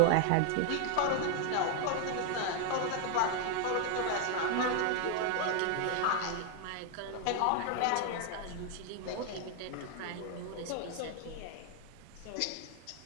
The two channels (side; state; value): both; different; correlation 0.00